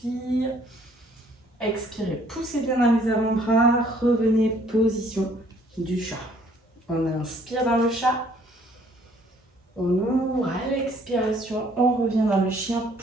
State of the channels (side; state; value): both; normal; correlation 0.61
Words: Expirez. Poussez bien dans les avant-bras. Revenez, position du chat. On inspire dans le chat. On ouvre à l'expiration. On revient dans le chien.